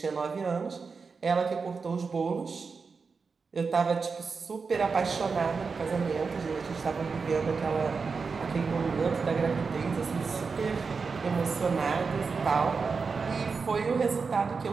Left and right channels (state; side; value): quieter; left; 4.9 dB